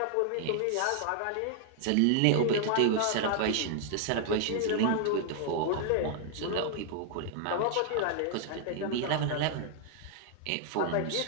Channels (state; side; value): different; both; correlation 0.00